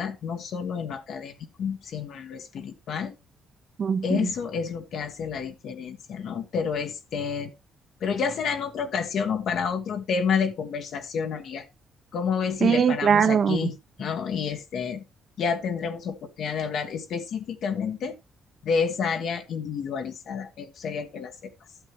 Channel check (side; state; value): both; normal; correlation 0.66